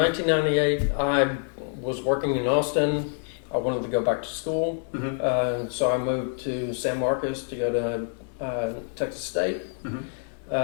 I was working in Austin. I wanted to go back to school. So I moved to San Marcos to go to Texas State.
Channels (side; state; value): right; silent; 57 dB below the other